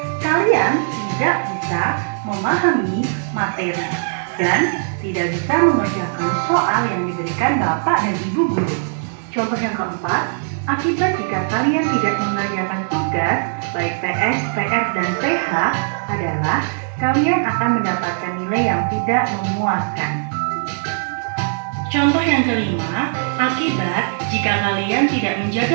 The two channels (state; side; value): silent; left; digital silence